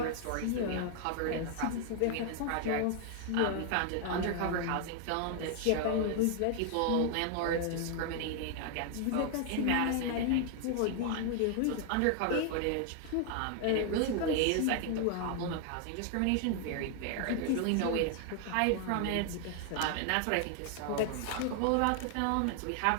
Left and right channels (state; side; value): different; both; correlation 0.00